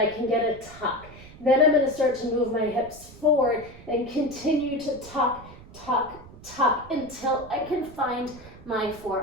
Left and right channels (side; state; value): right; noise; rumble, 19 dB below the sound